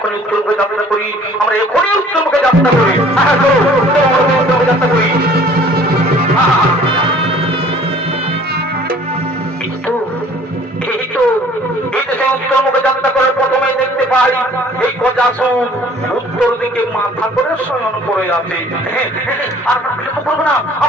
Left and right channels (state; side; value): normal; both; correlation 0.53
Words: উত্তর মুখে যাত্রা করি, আমরা এখনই উত্তর মুখে যাত্রা করি, যাত্রা করি। উত্তর মুখে যাত্রা করে প্রথমে দেখতে পাই এই গজাসুর উত্তর দিকে মাথা করে শয়ন করে আছে। আমরা বিলম্ব করবো না,